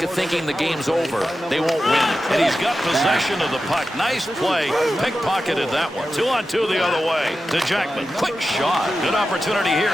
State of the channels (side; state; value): both; normal; correlation 0.92